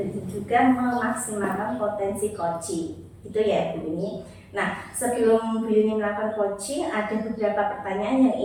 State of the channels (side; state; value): both; identical; correlation 1.00